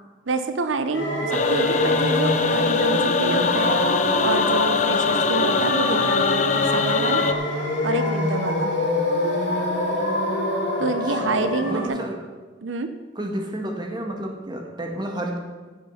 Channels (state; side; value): normal; both; correlation 0.00